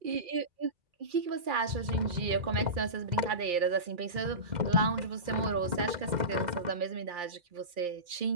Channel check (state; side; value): late; left; 2.4 ms